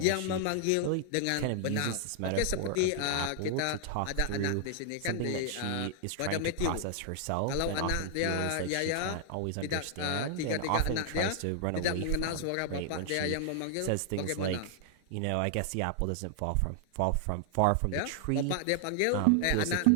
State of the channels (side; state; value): both; different; correlation 0.00